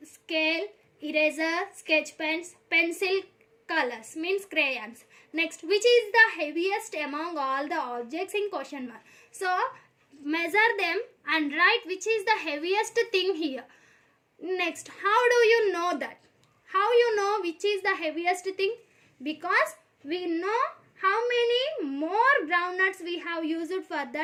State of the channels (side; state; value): both; identical; correlation 1.00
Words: scale, eraser, sketch pens, pencil, colors means crayons. Next, which is the heaviest among all the objects in question 1? So measure them and write which is the heaviest thing here. Next, how do you know that? How you know which is the heaviest thing? Because we know how many more groundnuts we have used for